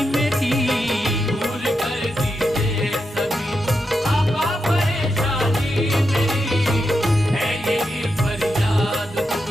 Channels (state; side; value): normal; both; correlation 0.86